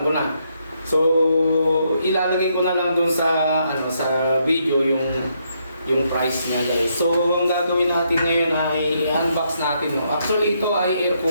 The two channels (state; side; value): inverted; both; correlation -0.76